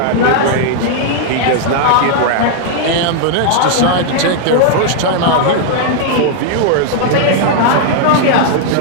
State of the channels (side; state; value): both; different; correlation -0.01